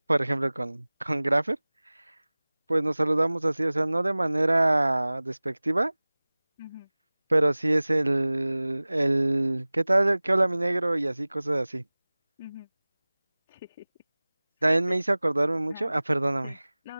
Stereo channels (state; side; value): inverted; both; correlation -1.00